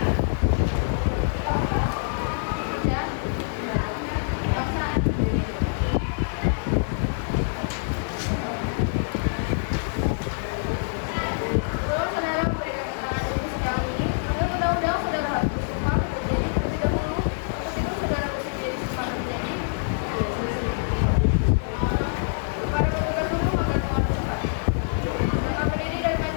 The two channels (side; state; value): right; silent; digital silence